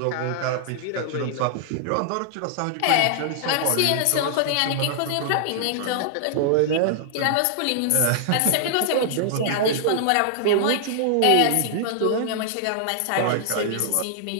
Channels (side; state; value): both; different; correlation -0.01